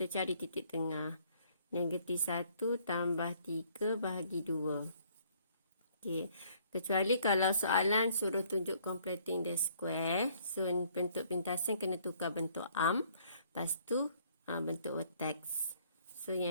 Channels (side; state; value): both; inverted; correlation -0.63